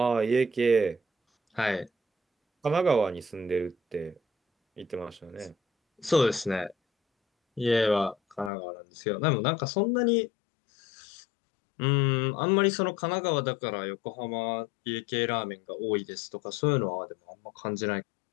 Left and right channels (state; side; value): drops out; right; at 8.5 s